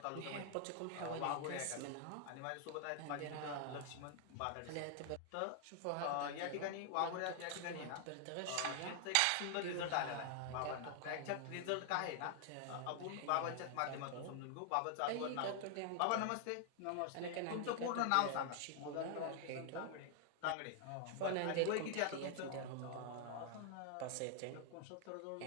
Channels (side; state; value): both; different; correlation 0.00